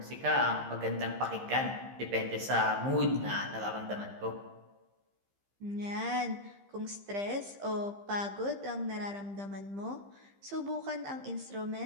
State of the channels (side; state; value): left; late; 15 ms